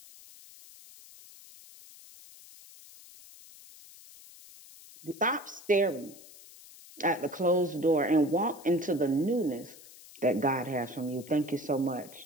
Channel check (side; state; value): left; noise; hiss, 20 dB below the sound